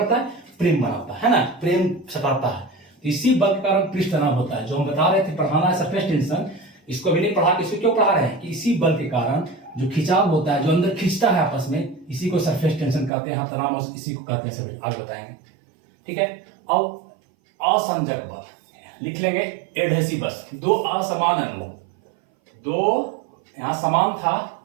है, प्रेम बनाता है ना, प्रेम सटाता है। तो इसी बल के कारण पृष्ठ तनाव होता है, जो हम बता रहे थे, पढ़ाना है सरफेस टेंशन, इसको भी नहीं पढ़ा, इसको क्यों पढ़ा रहे हैं कि इसी बल के कारण जो खिंचाव होता है, जो अंदर खींचता है आपस में, इसी को सरफेस टेंशन कहते हैं, तनाव इसी को कहते हैं, सब आगे बताएंगे। ठीक है। अब असंजक बल लिख लेंगे, एडहेसिवस, दो असमान अणु, दो यहां समान था,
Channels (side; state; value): left; drops out; at 13.1 s